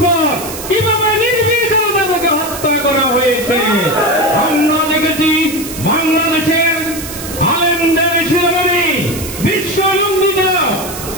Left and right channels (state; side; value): noise; right; hiss, 10 dB below the sound